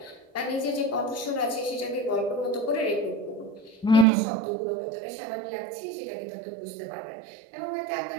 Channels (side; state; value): left; drops out; at 4.0 s